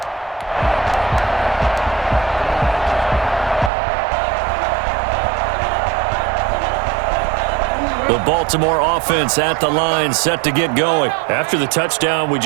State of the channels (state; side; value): drops out; left; at 3.7 s